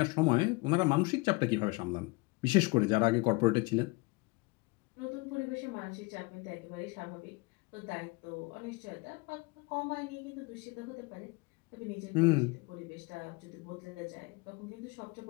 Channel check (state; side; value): quieter; right; 26.3 dB